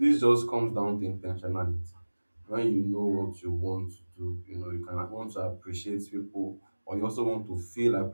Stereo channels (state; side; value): inverted; both; correlation -1.00